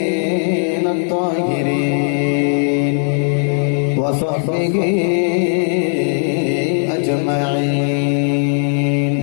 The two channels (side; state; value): right; silent; digital silence